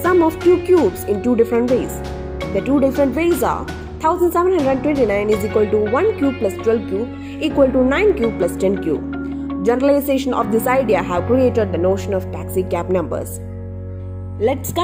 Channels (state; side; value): identical; both; correlation 1.00